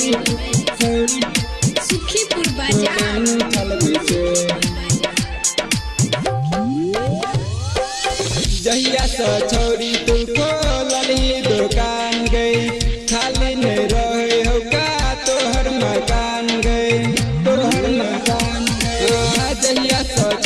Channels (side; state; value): both; identical; correlation 1.00